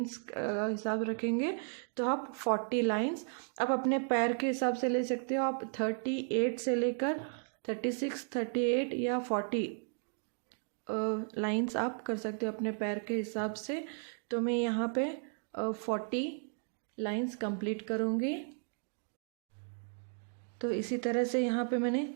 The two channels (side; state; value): left; silent; 55 dB below the other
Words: हिसाब रखेंगे। तो आप 40 लाइंस आप अपने पैर के हिसाब से ले सकते हो। आप 38 से लेकर 36, 38 या 40 लाइंस आप कर सकते हो अपने पैर के हिसाब से। तो मैं यहाँ पे 40 लाइंस कंप्लीट करूँगी। तो इसी तरह से यहाँ पे मैंने